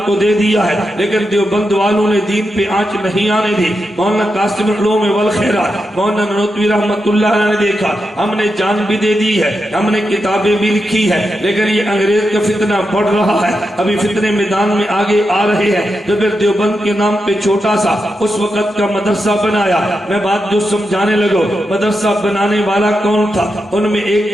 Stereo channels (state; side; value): normal; both; correlation 0.87